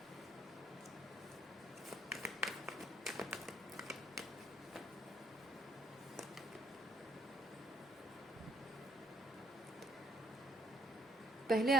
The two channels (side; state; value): both; normal; correlation 0.67